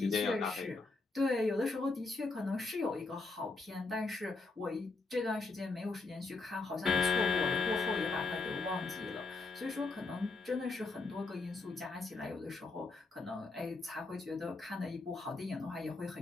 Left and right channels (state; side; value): quieter; right; 3.6 dB